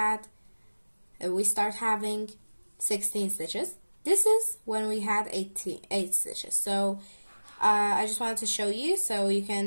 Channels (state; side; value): inverted; both; correlation -1.00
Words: We start having 16 stitches. This is when we had 8 stitches. So I just wanted to show you so you